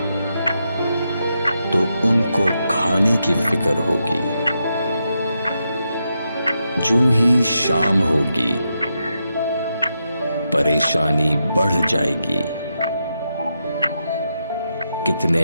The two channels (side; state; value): both; inverted; correlation -0.85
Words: तो उनको खाने की फिक्र होगी। जूं ही शाम होगी परेशानी बढ़ जाएगी, कितने